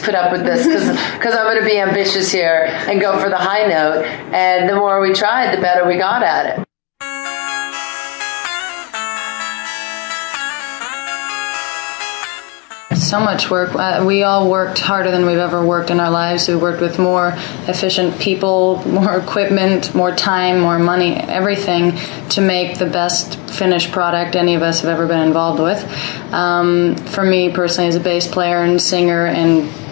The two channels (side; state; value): right; quieter; 29.9 dB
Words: put up with this because I'm going to be ambitious here and go for the high note. And the more we tried, the better we got at it. So much work. We all worked harder than we've ever worked in our lives. We worked with more efficient people, more equipment, more time, more money, everything to make the best finished product any of us have ever been involved with. For me personally, as a bass player and singer and